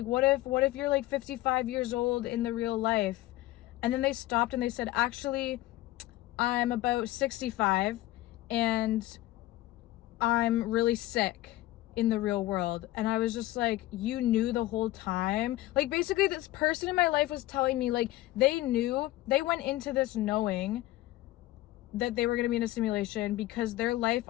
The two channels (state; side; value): quieter; right; 16.6 dB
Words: what if you're like 55 years old in the real life? And then they stopped and they said, actually, I'm about 65 and I'm really sick in the real world. And I was just like, you knew the whole time? Like, basically this person in my life was telling me, like, they knew, they went into this knowing that they were going to be in a simulation, because their life